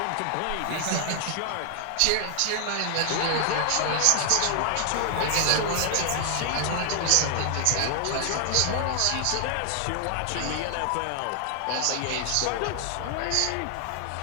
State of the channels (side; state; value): both; different; correlation 0.00